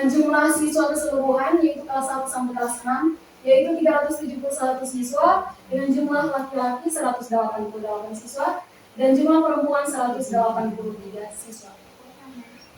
jumlah siswa keseluruhan yaitu kelas 1 sampai kelas 6 yaitu 371 siswa, dengan jumlah laki-laki 188 siswa dan jumlah perempuan 183 siswa.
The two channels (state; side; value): identical; both; correlation 1.00